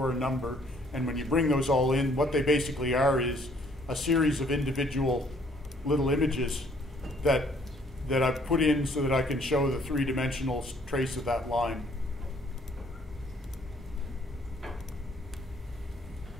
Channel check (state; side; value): normal; both; correlation 0.62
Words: a number, and when you bring those all in, what they basically are is a series of individual little images that I've put in so that I can show the three-dimensional trace of that line.